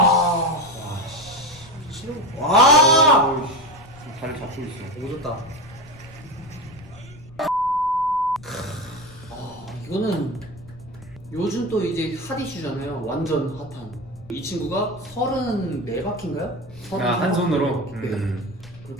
미친놈. 와! 어우, 지금 다리 잡고 있어. 오졌다. 이거는 요즘 또 이제 핫 이슈잖아요. 완전 핫한. 이 친구가 34바퀴인가요? 한 손으로. 네.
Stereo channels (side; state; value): left; noise; rumble, 20 dB below the sound